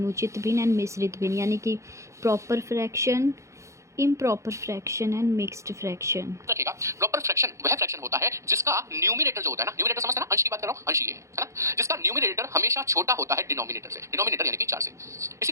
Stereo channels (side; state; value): left; late; 0.14 ms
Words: भिन्न एंड मिश्रित भिन्न, यानी कि proper fraction, improper fraction and mixed fraction. रखिएगा, प्रॉपर फ्रैक्शन वह फ्रैक्शन होता है जिसका न्यूमिनेटर जो होता है ना, न्यूमिनेटर समझते हैं ना, अंश की बात कर रहा हूं, अंश ये है ना, जिसका न्यूमिनेटर हमेशा छोटा होता है डिनोमिनेटर से, डिनोमिनेटर यानी कि 4 से।